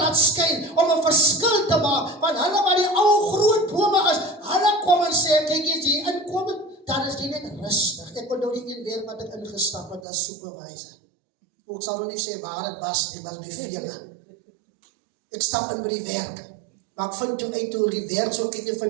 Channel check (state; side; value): drops out; left; at 10.0 s